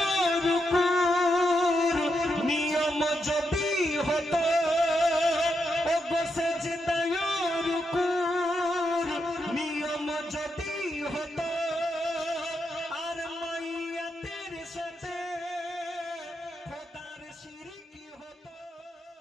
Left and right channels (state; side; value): normal; both; correlation 0.83